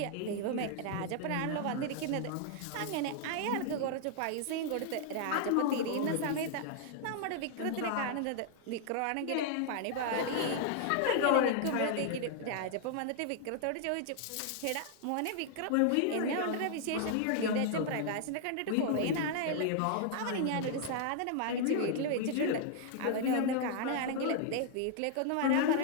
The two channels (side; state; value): both; different; correlation -0.01